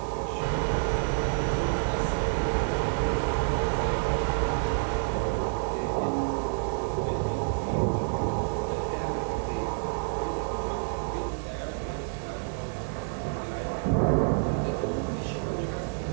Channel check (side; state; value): left; silent; digital silence